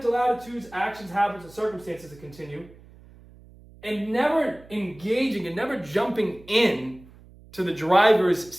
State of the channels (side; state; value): right; noise; hum, 23 dB below the sound